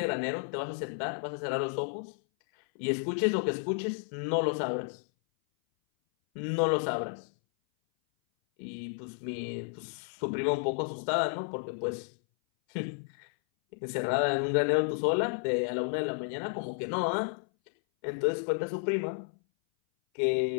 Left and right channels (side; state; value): right; silent; 57 dB below the other